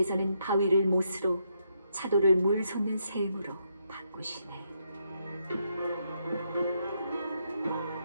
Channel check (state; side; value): inverted; both; correlation -0.78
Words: 바위를 못으로, 차돌을 물 솟는 샘으로 바꾸시네.